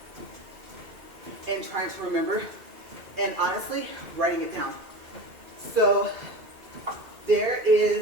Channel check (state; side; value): late; left; 2.2 ms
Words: and trying to remember, and honestly, writing it down. So there